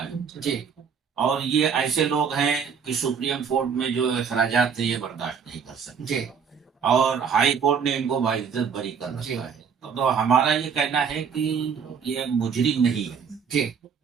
है, जी और ये ऐसे लोग हैं कि सुप्रीम कोर्ट में जो अखराजात हैं ये बर्दाश्त नहीं कर सकते, जी और हाई कोर्ट ने इनको बाइज्जत बरी कर जी रखा है। तो हमारा ये कहना है कि ये मुजरिम नहीं है, जी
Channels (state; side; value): quieter; left; 6.6 dB